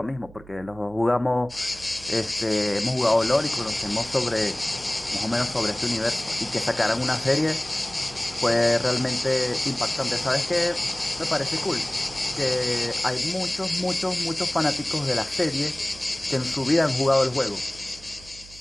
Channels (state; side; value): noise; right; hum, 20 dB below the sound